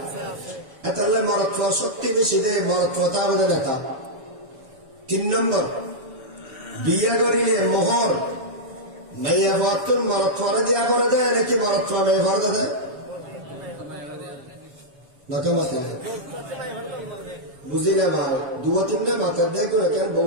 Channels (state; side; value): late; left; 7.1 ms